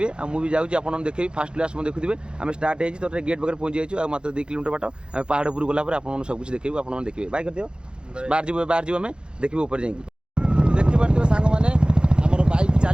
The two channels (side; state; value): left; late; 0.050 ms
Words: आ मुझे जाऊँगी आपको देखेबी फास्ट क्लास मैं देखुए आम स्टार्ट हो तो गेट पाखे पहुँच जाइए मात्र 2 किलोमीटर बाट आम पहाड़ उपर गलापर आप सब कुछ देखिए आप देखिए बाय कर दियो बाहर जीव आम देखिए ऊपर जाइए देखिपे सांग मैंने आम बैक